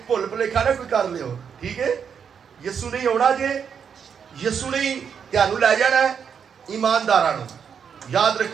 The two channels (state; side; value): quieter; left; 7.2 dB